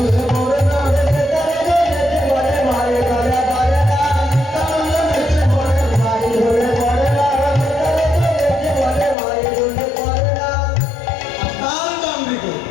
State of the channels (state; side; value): drops out; right; at 9.2 s